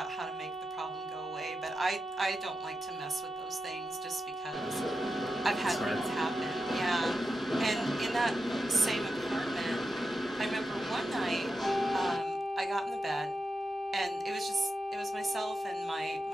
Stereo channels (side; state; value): both; normal; correlation 0.89